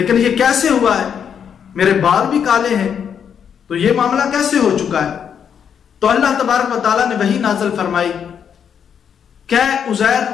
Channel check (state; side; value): quieter; right; 7.8 dB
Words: ये कैसे हुआ है, मेरे बाल भी काले हैं, तो ये मामला कैसे हो चुका है। तो अल्लाह तबारक व तआला ने वही नाज़िल फरमाई, क्या उज़ैर